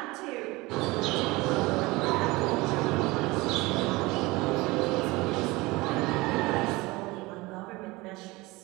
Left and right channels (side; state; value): left; quieter; 22.1 dB